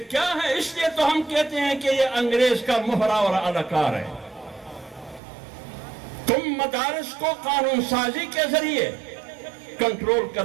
کیا ہے؟ اس لیے تو ہم کہتے ہیں کہ یہ انگریز کا مہرا اور اداکار ہے. تم مدارس کو قانون سازی کے ذریعے کنٹرول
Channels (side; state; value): left; drops out; at 5.2 s